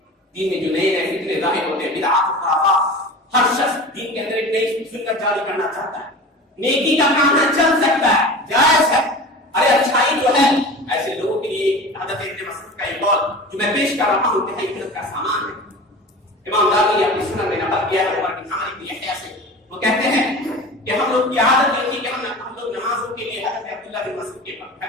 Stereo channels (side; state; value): both; normal; correlation 0.35